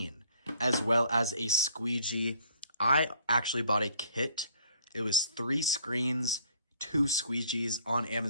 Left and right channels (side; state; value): both; inverted; correlation -0.60